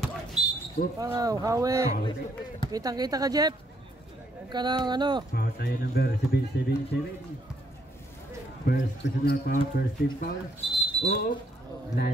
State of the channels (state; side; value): normal; both; correlation 0.70